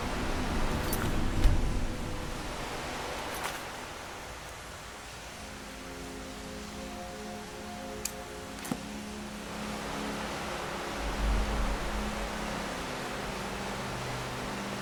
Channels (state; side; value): identical; both; correlation 1.00